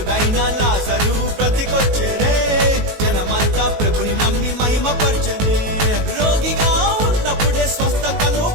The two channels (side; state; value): left; late; 19 ms